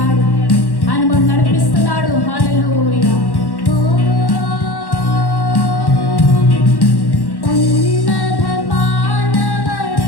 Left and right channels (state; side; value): late; right; 1.1 ms